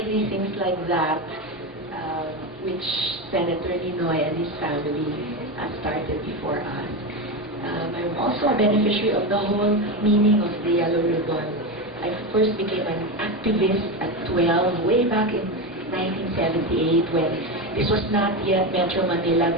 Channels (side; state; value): both; normal; correlation 0.16